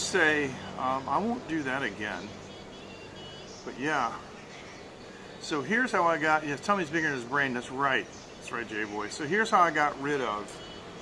say I won't do that again. But yeah. So here's how I got. Yes, tummy's bigger than his brain. That's right. That's right, J-Boy. So here's how I got rid of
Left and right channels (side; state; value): both; identical; correlation 1.00